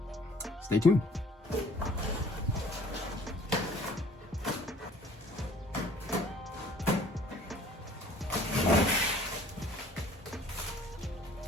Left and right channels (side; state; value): both; normal; correlation 0.53